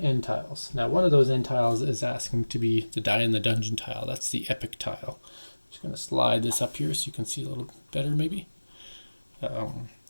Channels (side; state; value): both; inverted; correlation -1.00